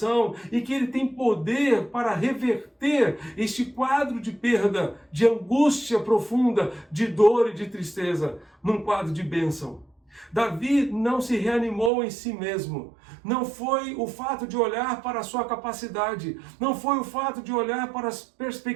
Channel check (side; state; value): left; drops out; at 11.9 s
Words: e que Ele tem poder para reverter este quadro de perda, de angústia profunda, de dor e de tristeza, num quadro de bênção. Davi não se reanimou em si mesmo. Não foi o fato de olhar para a sua capacidade. Não foi o fato de olhar para as